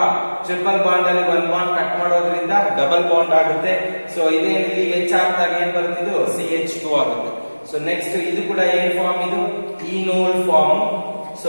ಟ್ರಿಪಲ್ ಬಾಂಡ್ ಅಲ್ಲಿ ಒಂದು ಬಾಂಡ್ ಕಟ್ ಮಾಡೋದ್ರಿಂದ ಡಬಲ್ ಬಾಂಡ್ ಆಗುತ್ತೆ. ಸೊ ಇದೇ ಇಲ್ಲಿ H ಹಾಕಿದಾಗ ಏನ್ ಬರ್ತಿದ್ದು, CH2 ಆಗುತ್ತೆ. ಸೊ ನೆಕ್ಸ್ಟ್ ಇದು ಕೂಡ ಏನ್ ಫಾರ್ಮ್, ಇದು ಈನೋಲ್ ಫಾರ್ಮ್. ಸೊ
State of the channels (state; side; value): inverted; both; correlation -1.00